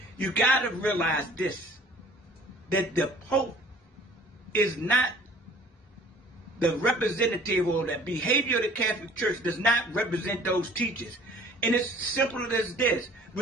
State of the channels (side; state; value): both; normal; correlation 0.52